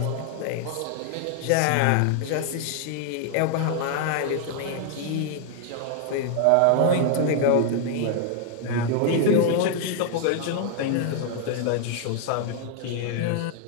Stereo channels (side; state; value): both; different; correlation 0.00